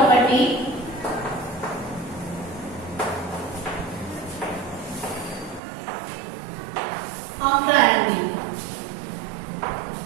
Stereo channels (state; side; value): drops out; left; at 5.6 s